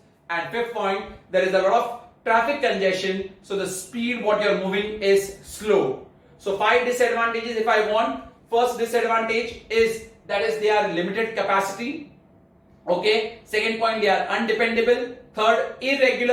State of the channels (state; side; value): identical; both; correlation 1.00